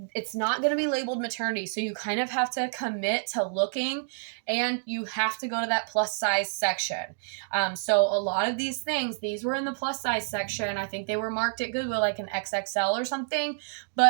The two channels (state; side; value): silent; left; digital silence